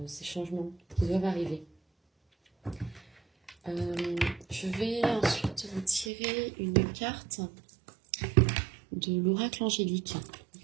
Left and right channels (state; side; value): drops out; left; at 6.1 s